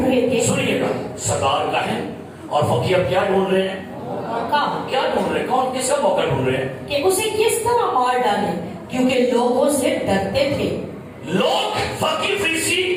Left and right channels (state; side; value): identical; both; correlation 1.00